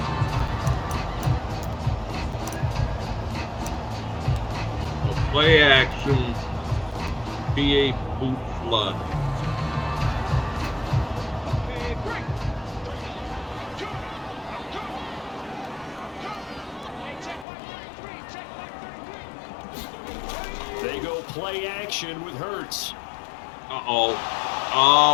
Play action, PA boot flood. They go play action with Hurts. Uh-oh.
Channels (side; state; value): right; drops out; at 17.4 s